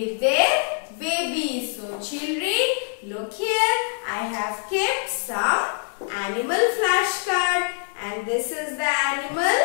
their babies. So children, look here. I have kept some animal flashcard, and this is the animal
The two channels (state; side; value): silent; right; 63 dB below the other